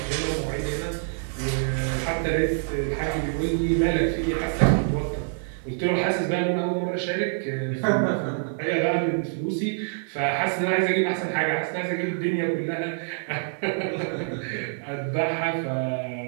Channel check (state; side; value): silent; left; digital silence